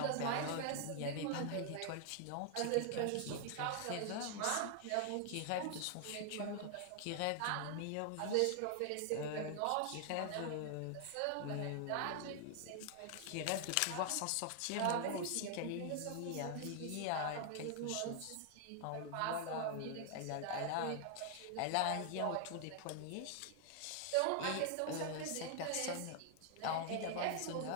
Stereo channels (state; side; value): different; both; correlation 0.00